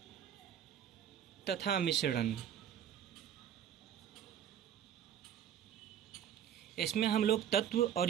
तथा मिश्रण। इसमें हम लोग तत्व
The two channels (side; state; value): left; quieter; 9.6 dB